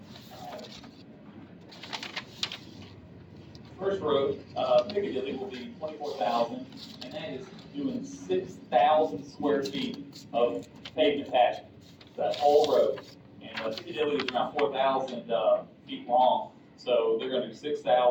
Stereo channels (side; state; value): both; identical; correlation 1.00